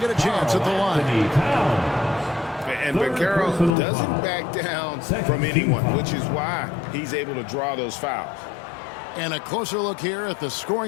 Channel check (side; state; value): right; drops out; at 3.8 s